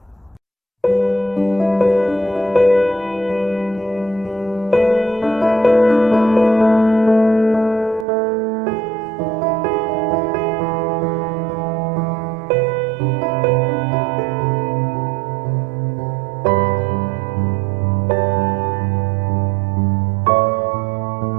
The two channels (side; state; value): left; drops out; at 8.1 s